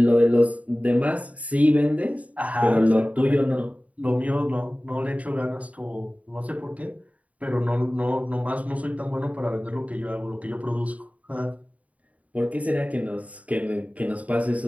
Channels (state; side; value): late; left; 0.069 ms